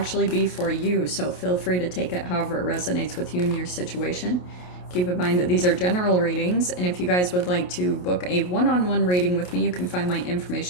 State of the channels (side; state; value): right; late; 28 ms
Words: be for you, so feel free to take it however it resonates with you and your situation. Keep in mind that these are general readings, and if you guys would like to book a one-on-one reading with me, you can find my